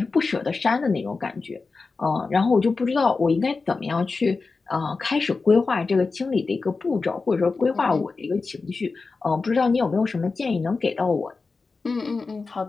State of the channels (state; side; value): quieter; right; 4.2 dB